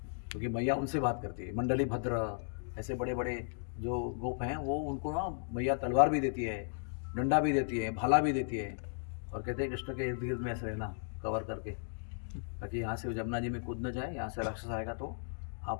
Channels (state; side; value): silent; right; digital silence